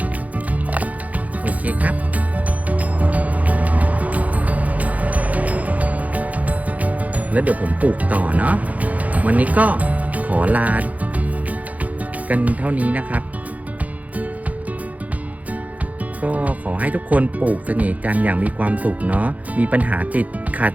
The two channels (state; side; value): late; left; 0.073 ms